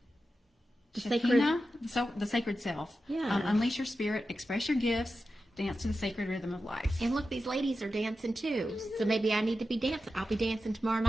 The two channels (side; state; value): both; normal; correlation 0.91